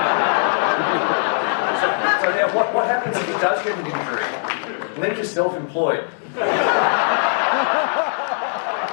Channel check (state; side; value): silent; right; digital silence